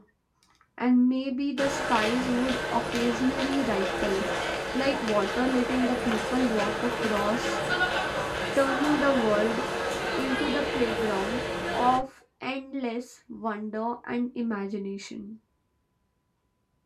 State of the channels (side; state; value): both; identical; correlation 1.00